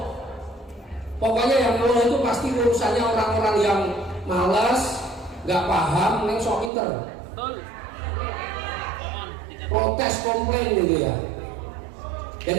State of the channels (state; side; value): drops out; left; at 6.7 s